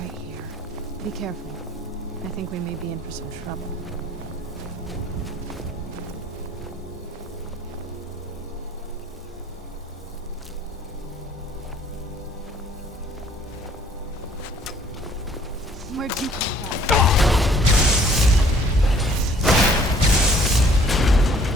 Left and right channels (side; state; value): both; normal; correlation 0.58